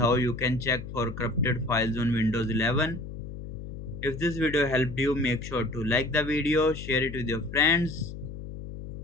you can check for corrupted files on Windows 11. If this video helped you, make sure to like the video, share it with your friends.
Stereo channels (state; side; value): noise; left; hum, 10 dB below the sound